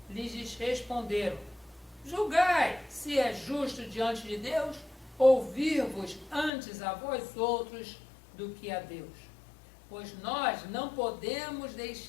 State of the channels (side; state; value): right; drops out; at 6.5 s